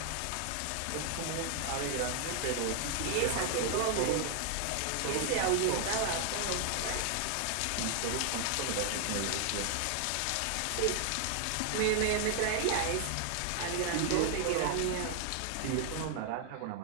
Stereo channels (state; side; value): different; both; correlation 0.00